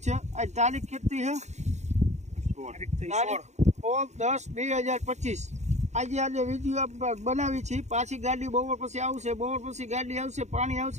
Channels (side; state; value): left; late; 0.33 ms